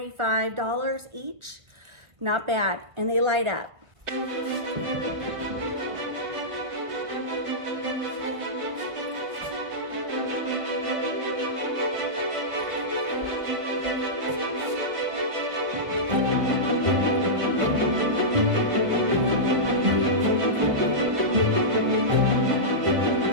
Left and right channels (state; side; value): late; left; 1.5 ms